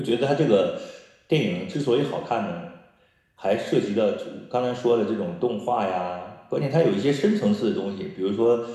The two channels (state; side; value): identical; both; correlation 1.00